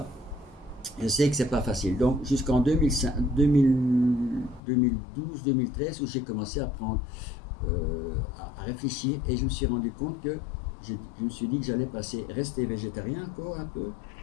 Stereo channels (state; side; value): drops out; right; at 4.6 s